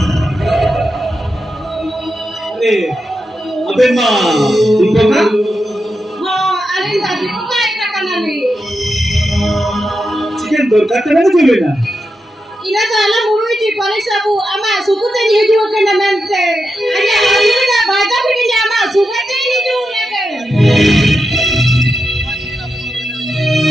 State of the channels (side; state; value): both; normal; correlation 0.87